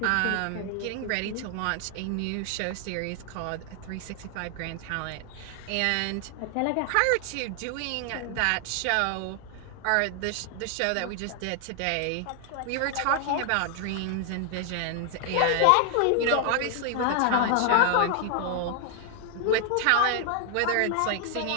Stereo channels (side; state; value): both; different; correlation 0.00